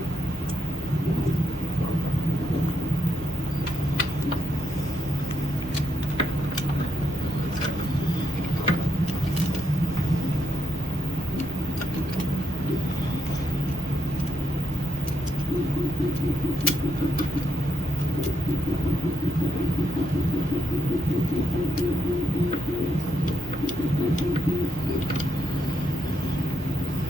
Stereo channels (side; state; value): both; normal; correlation 0.78